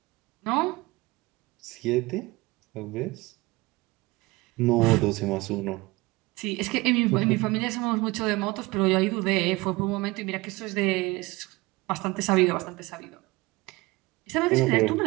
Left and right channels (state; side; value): quieter; left; 22.1 dB